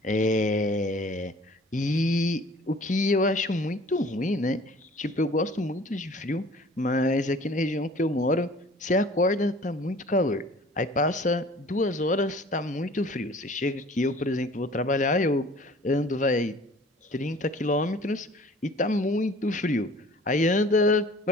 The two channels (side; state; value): both; normal; correlation 0.49